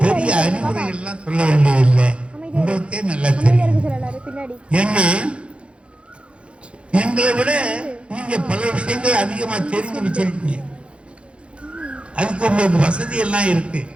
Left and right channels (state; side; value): late; left; 0.059 ms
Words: பெரிய அறிவுரைகள் எல்லாம் சொல்ல வேண்டியதில்லை, உங்களுக்கே நல்லா தெரியும். ஏன்னா எங்களை விட நீங்க பல விஷயங்கள் அதிகமா தெரிஞ்சு வச்சிருக்கீங்க. அதுக்கு உங்களுக்கு வசதி எல்லாம் இருக்கு.